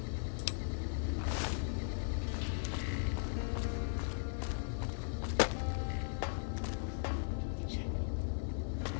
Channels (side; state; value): right; silent; digital silence